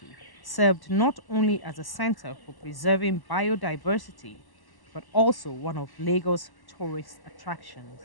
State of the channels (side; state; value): right; late; 1.1 ms